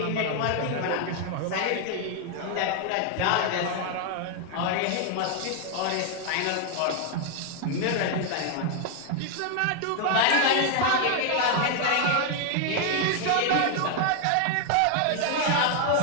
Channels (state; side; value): different; both; correlation 0.00